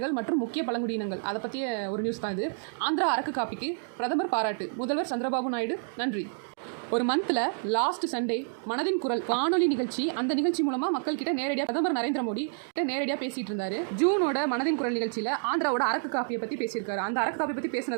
மற்றும் முக்கிய பழங்குடியினங்கள், அதை பற்றிய ஒரு நியூஸ் தான் இது. ஆந்திரா அரக்கு காப்பிக்கு பிரதமர் பாராட்டு, முதல்வர் சந்திரபாபு நாயுடு நன்றி. ஒரு மந்த்தில் லாஸ்ட் சண்டே மனதின் குரல் வானொலி நிகழ்ச்சி, அந்த நிகழ்ச்சி மூலமாக மக்கள் கிட்ட நேரடியாக பிரதமர் நரேந்திர மோடி கிட்ட நேரடியாக பேசிட்டு இருந்தாரு. ஜூனோட மனதின் குரல் நிகழ்ச்சியில் ஆந்திராவோட அரக்கு காப்பியை பற்றி பேசியிருக்காரு. அந்த அரக்கு காப்பியை பற்றி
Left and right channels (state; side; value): silent; left; 59 dB below the other